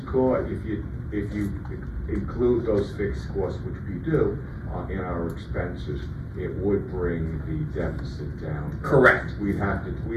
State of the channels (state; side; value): identical; both; correlation 1.00